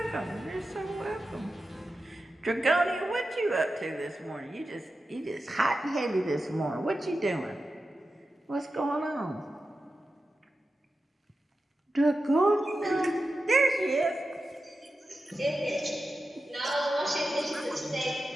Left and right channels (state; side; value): normal; both; correlation 0.92